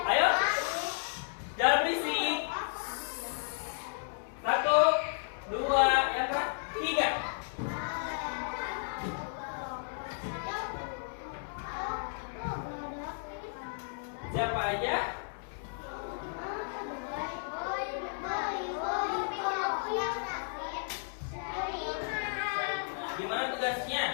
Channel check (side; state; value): right; silent; 55 dB below the other